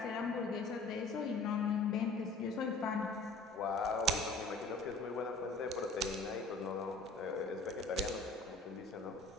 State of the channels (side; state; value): right; quieter; 3.2 dB